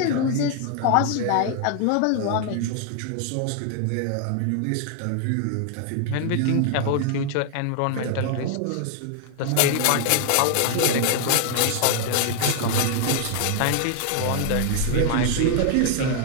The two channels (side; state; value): both; different; correlation 0.00